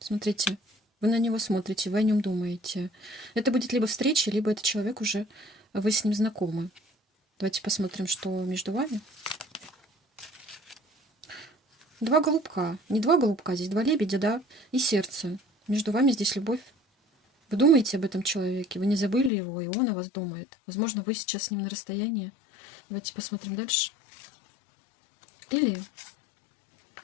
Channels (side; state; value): right; drops out; at 19.3 s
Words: Вы на него смотрите, вы о нем думаете. Это будет либо встреча, либо это человек уже, вы с ним знакомы. Давайте посмотрим, что между вами. Два голубка. Не два голубка, здесь два лебедя, да, и сердце. Между вами здесь любовь. Вы думаете об этом человеке, вы не забыли его, и он о вас думает. Возможно, вы сейчас с ним на расстоянии. Давайте посмотрим дальше. Или